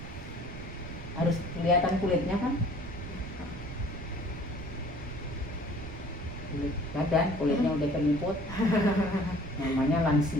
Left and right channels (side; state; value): right; noise; rumble, 11 dB below the sound